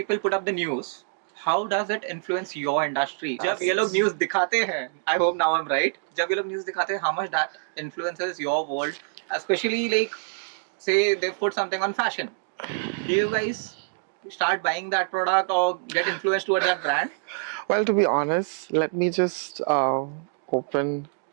put up the news, how does it influence your industry? जब ये लोग news दिखाते हैं, I hope now I'm right. जब ये लोग news दिखाते हैं, how much that influences your world, especially like say they put something on fashion. Do you guys start buying that product or get influenced towards that brand? Well, to be honest, let me just open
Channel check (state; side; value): silent; left; digital silence